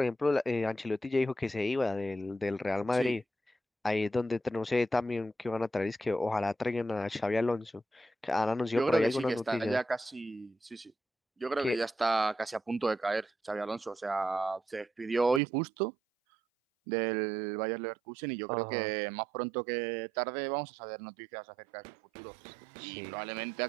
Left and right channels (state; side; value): drops out; left; at 15.4 s